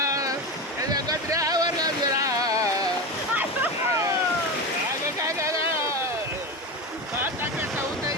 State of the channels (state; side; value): normal; both; correlation 0.21